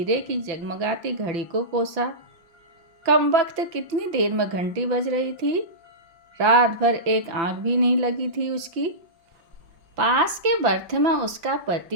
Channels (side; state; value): left; late; 5.9 ms